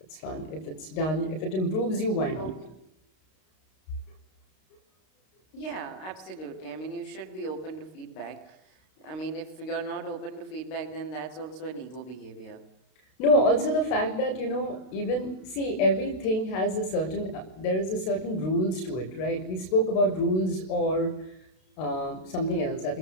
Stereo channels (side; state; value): right; late; 32 ms